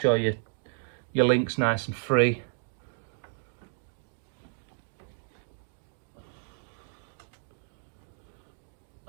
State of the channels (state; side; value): silent; left; digital silence